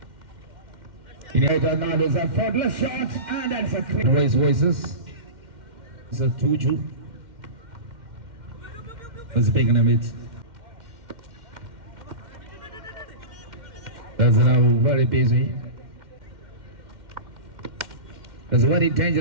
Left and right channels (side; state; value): left; late; 2.1 ms